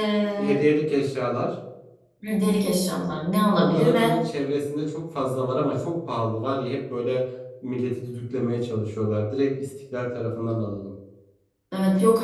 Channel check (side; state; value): both; identical; correlation 1.00